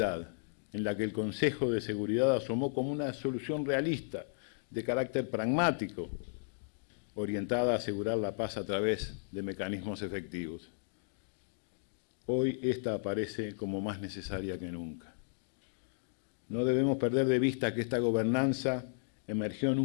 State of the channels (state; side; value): silent; right; digital silence